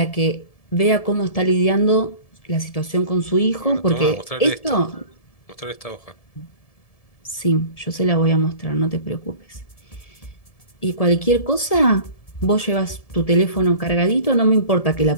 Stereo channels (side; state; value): right; late; 1.7 ms